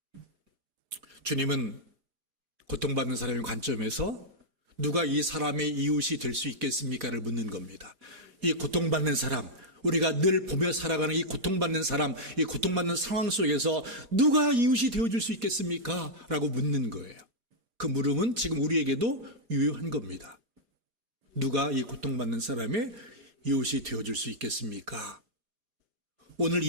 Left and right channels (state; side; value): late; left; 4.9 ms